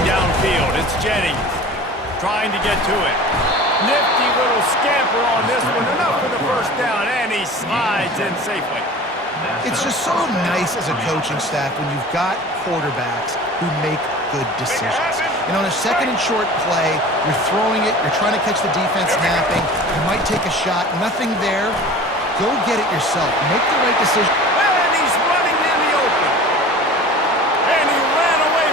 downfield, it's Jennings trying to get to it. Nifty little scamper on this one, enough for the first down, and he slides in safely. It's just so nice as a coaching staff when you've got quarterbacks who make good decisions. And on a second and short play, you're throwing it, you're trying to catch the defense napping, you might take a shot, nothing there. Go get it yourself. Make the right decision. And he's running in the open. And he ran away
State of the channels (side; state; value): both; normal; correlation 0.40